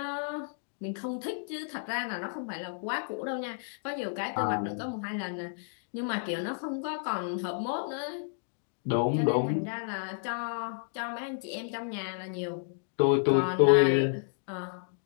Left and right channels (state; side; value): silent; right; digital silence